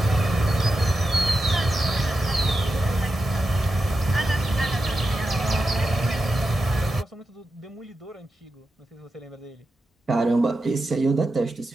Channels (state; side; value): normal; both; correlation 0.90